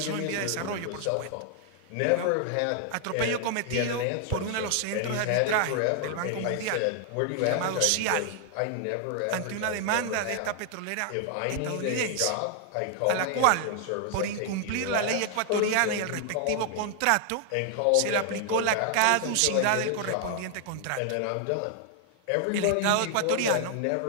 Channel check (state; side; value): different; both; correlation 0.00